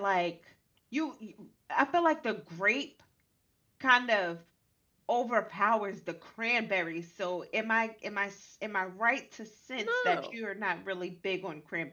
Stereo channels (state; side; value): identical; both; correlation 1.00